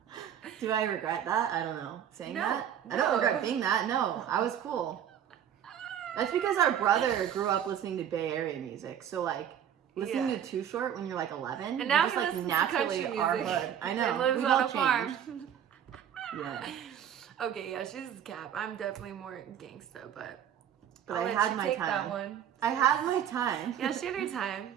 Do I regret that? I don't know. Saying No, that? I no. don't regret being that. No, I was cool. That's because our brother grew up listening to Bay Area music. So, like, listening Yeah. to Too Short when you're like 11, And now just he like listens to naturally country our music. hood. I know. And lives We've on all a farm. changed. Yeah. Okay, yeah, she's cap. I'm definitely more gangsta, but But I'll I let had you my take time. that one. I had my time. Yeah, she had her time.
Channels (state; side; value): quieter; left; 9.5 dB